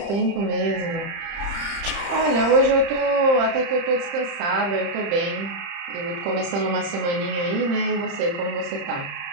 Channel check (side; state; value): left; late; 30 ms